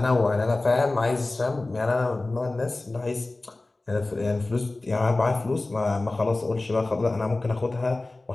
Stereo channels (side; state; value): right; quieter; 3.0 dB